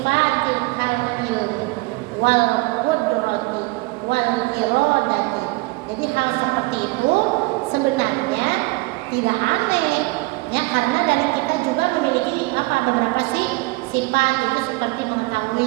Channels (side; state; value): left; quieter; 23.4 dB